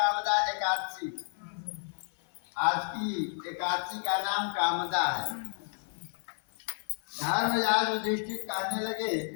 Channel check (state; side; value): silent; right; 57 dB below the other